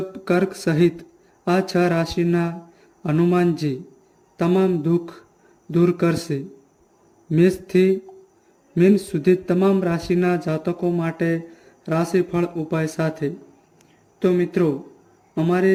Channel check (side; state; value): both; identical; correlation 1.00